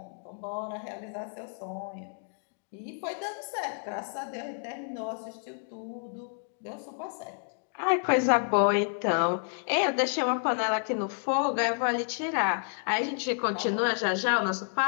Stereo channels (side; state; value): right; silent; 58 dB below the other